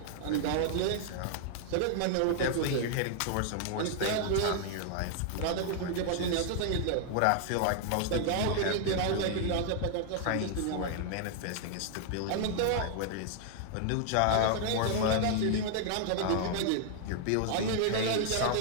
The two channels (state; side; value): different; both; correlation 0.00